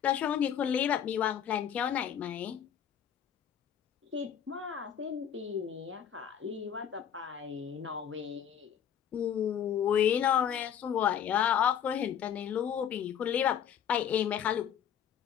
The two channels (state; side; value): quieter; right; 9.0 dB